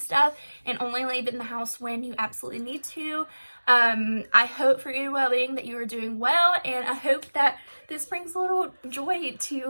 and only leaving the house when you absolutely need to. I hope for your well-being that you are doing well, and I hope that this brings a little joy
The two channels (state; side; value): inverted; both; correlation -1.00